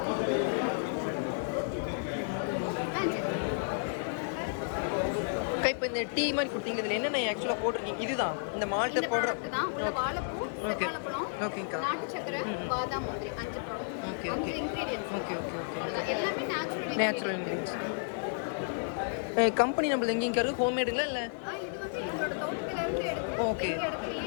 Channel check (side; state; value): right; silent; digital silence